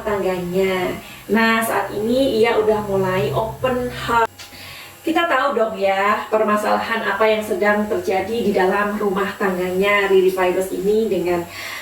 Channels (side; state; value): both; identical; correlation 1.00